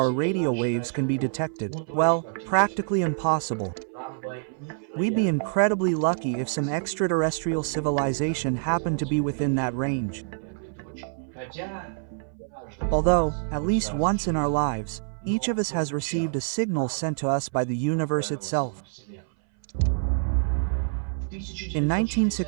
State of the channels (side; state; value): left; silent; 58 dB below the other